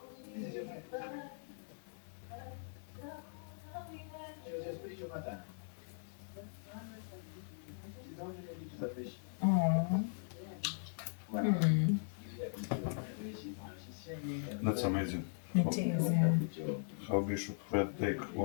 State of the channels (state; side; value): silent; right; digital silence